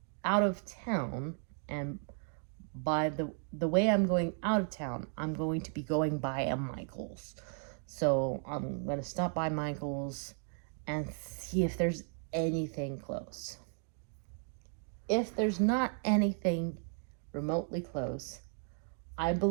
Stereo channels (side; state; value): left; silent; 54 dB below the other